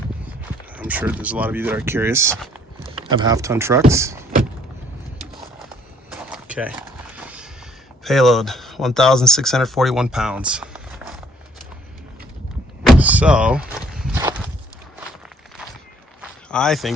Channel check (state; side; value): normal; both; correlation 0.62